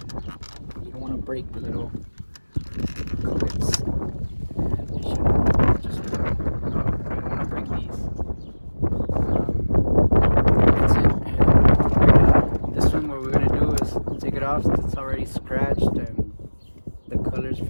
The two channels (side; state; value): both; inverted; correlation -1.00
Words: You don't want to break the little clips. And they should just work. You don't want to break these. That's it. And this one, what we're gonna do is take it off. It's already scratched and the color's